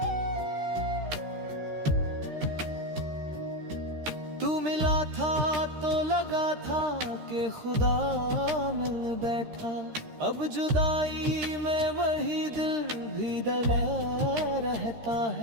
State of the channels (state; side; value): late; left; 13 ms